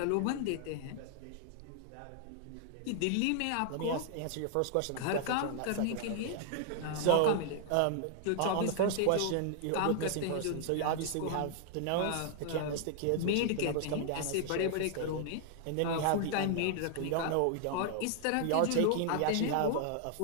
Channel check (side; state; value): both; different; correlation 0.00